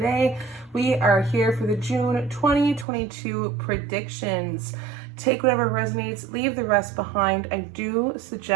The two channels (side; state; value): left; drops out; at 2.9 s